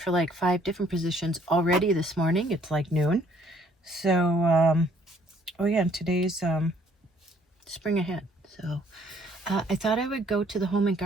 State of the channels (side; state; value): both; normal; correlation 0.62